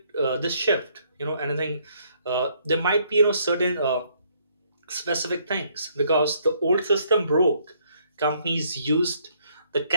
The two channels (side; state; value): both; inverted; correlation -0.68